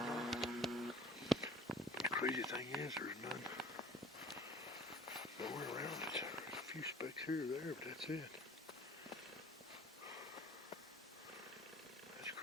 But the crazy thing is, there's nowhere around it. There's a few specks here or there, but that's it. That's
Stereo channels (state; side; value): normal; both; correlation 0.47